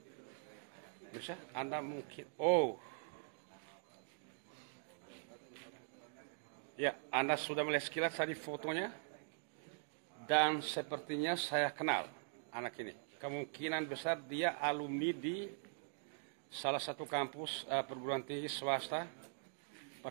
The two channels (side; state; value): left; silent; digital silence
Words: Bisa, Anda mungkin... Oh. Ya, Anda sudah melihat sekilas tadi fotonya. Dan sepertinya saya kenal anak ini. Kemungkinan besar dia alumni di salah satu kampus perguruan tinggi swasta. Pak